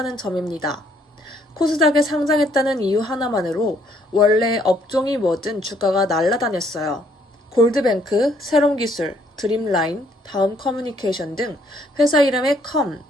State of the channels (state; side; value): normal; both; correlation 0.67